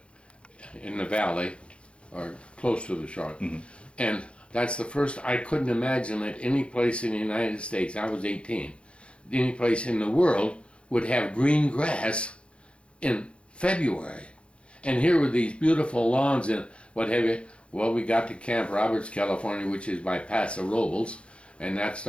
in the valley, or close to the shore. And that's the first, I couldn't imagine that any place in the United States, I was 18, any place in the world would have green grass in February. And here were these beautiful lawns and what have you. Well, we got to Camp Roberts, California, which is by Paso Robles, and that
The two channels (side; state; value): right; late; 0.059 ms